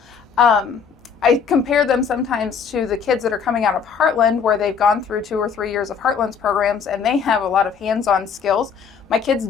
I compare them sometimes to the kids that are coming out of Heartland, where they've gone through 2 or 3 years of Heartland's programs, and they have a lot of hands-on skills. My kids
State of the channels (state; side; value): quieter; right; 6.3 dB